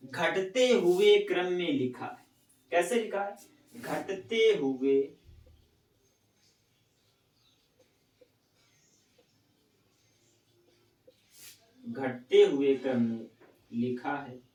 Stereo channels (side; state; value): both; identical; correlation 1.00